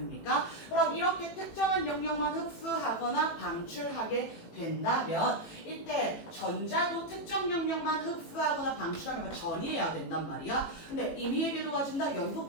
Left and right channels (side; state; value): right; late; 18 ms